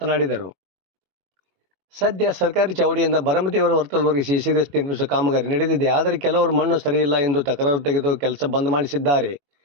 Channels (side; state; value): left; late; 21 ms